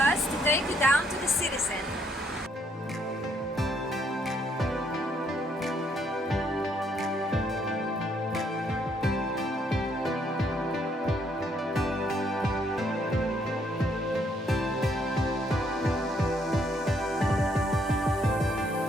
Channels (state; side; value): normal; both; correlation 0.70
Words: to take you down to the city center.